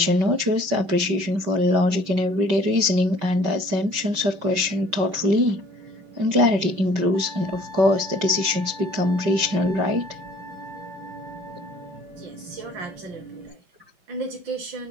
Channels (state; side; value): late; left; 5.2 ms